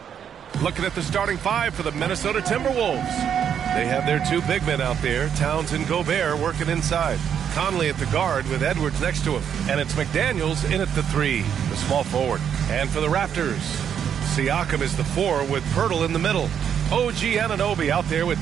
Looking at the starting five for the Minnesota Timberwolves. They have their two big men out there, Towns and Gobert, working inside. Conley at the guard with Edwards next to him. And it's McDaniels in at the three, the small forward. And for the Raptors, Siakam is the four with Pirtle in the middle. OG Anunoby out there with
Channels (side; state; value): left; quieter; 8.5 dB